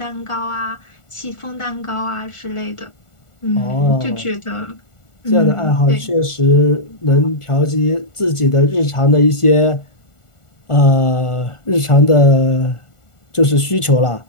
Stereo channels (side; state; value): right; late; 1.4 ms